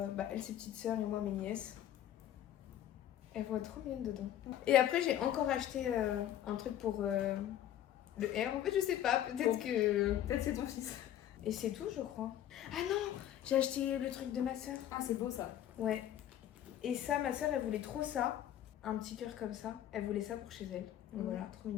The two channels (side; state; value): right; quieter; 11.4 dB